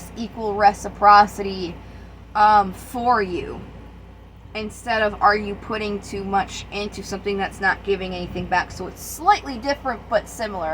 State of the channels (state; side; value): identical; both; correlation 1.00